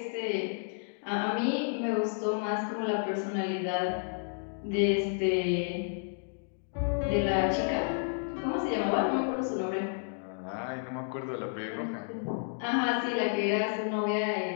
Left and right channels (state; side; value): silent; right; digital silence